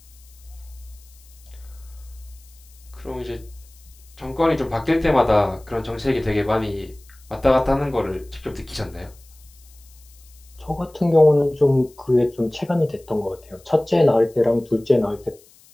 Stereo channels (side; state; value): left; noise; hiss, 27 dB below the sound